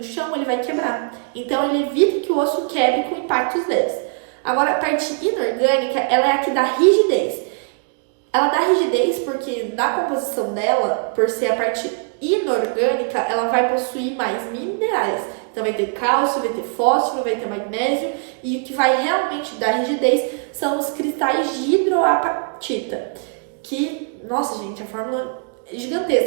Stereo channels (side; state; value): left; quieter; 39.3 dB